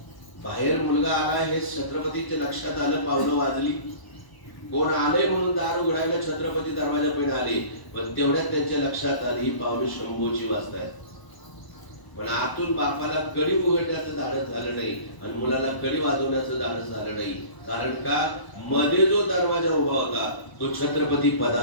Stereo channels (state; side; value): late; right; 1.0 ms